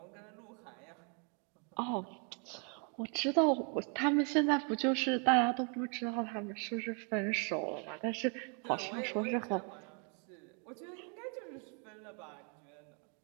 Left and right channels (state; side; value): quieter; left; 38.6 dB